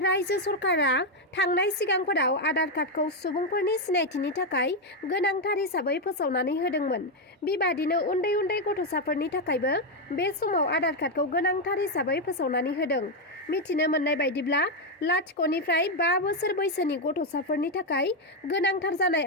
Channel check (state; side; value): normal; both; correlation 0.04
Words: सरकारा थांनाय सिगांफोराव आधार कार्डखौ सुबुंफोरनि सिनायथिनि थाखाय गोनांथार हिसाबै फोसावनानै होदोंमोन। बेबादिनो उन्दै उन्दै गथ'साफोरनि थाखायबो बे समाव आधार कार्डखौ गोनांथार हिसाबै फोसावनानै होदों। मिथिनो मोननाय बायदिब्ला 0-निफ्राय 5 बोसोर बैसोनि गथ'साफोरनि थाखाय गोनांथार जानाय